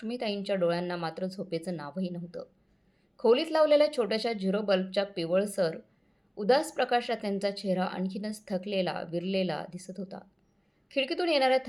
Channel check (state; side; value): identical; both; correlation 1.00